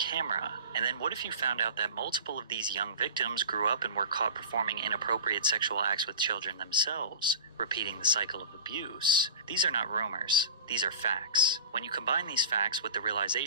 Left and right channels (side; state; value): both; inverted; correlation -0.34